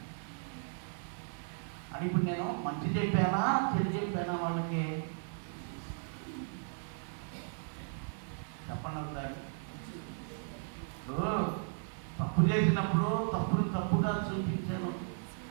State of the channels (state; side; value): silent; left; digital silence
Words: అని ఇప్పుడు నేను మంచి చెప్పానా చెడు చెప్పానా వాళ్ళకి? చెప్పండి ఒకసారి. తప్పు చేసినప్పుడు తప్పుగా చూపించాను.